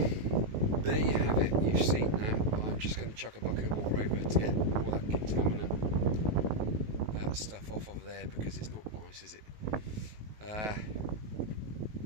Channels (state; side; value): late; left; 19 ms